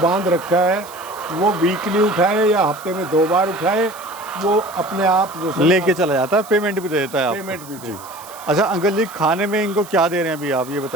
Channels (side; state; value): right; noise; hiss, 18 dB below the sound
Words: रखा है, वो वीकली उठाए या हफ्ते में 2 बार उठाए, वो अपने आप जो लेके चला जाता है, पेमेंट भी दे देता है आपको। पेमेंट भी दे। अच्छा अंकल जी, खाने में इनको क्या दे रहे हैं अभी आप ये